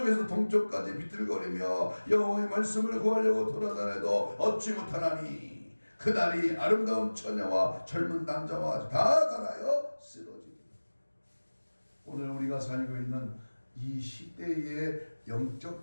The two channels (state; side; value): inverted; both; correlation -1.00